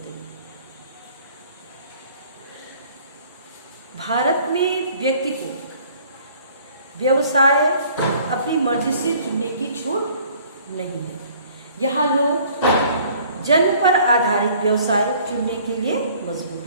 भारत में व्यक्ति को व्यवसाय अपनी मर्जी से चुनने की छूट नहीं है। यहाँ लोग जन्म पर आधारित व्यवसाय चुनने के लिए मजबूर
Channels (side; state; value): both; inverted; correlation -0.55